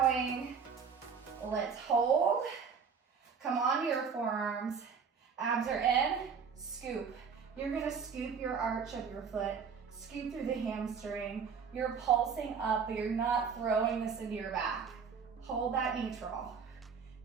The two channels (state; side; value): quieter; left; 6.2 dB